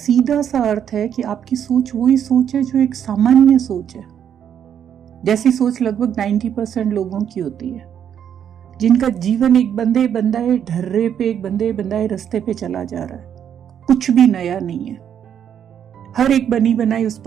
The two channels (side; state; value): left; quieter; 9.0 dB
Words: सा अर्थ है कि आपकी सोच वही सोच है जो एक सामान्य सोच है, जैसी सोच लगभग 90% लोगों की होती है, जिनका जीवन एक बंदे बंदाए ढर्रे पे, एक बंदे बंदाए रास्ते पे चला जा रहा है। कुछ भी नया नहीं है। हर एक बनी बनाई उस